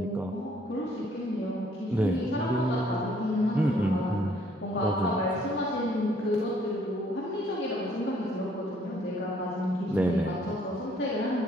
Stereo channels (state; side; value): normal; both; correlation 0.63